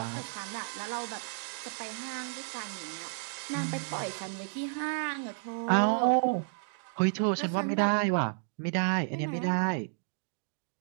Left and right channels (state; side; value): silent; left; digital silence